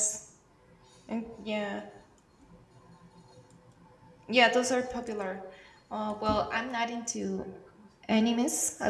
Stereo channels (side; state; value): both; identical; correlation 1.00